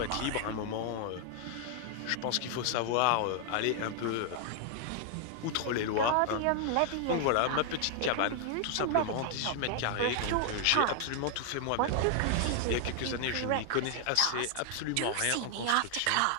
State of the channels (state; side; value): different; both; correlation 0.00